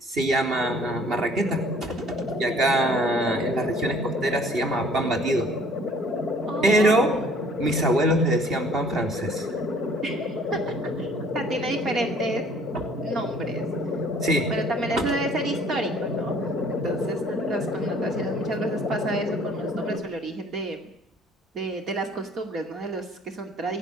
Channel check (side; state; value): both; normal; correlation 0.55